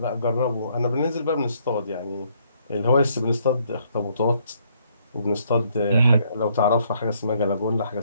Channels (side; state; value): both; inverted; correlation -0.68